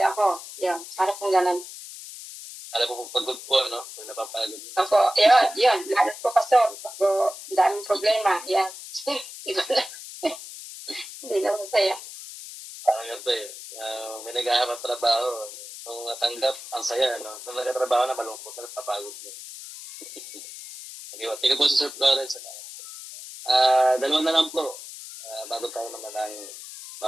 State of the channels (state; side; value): noise; left; hiss, 13 dB below the sound